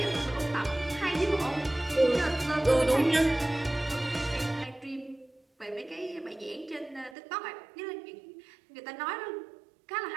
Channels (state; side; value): drops out; left; at 7.2 s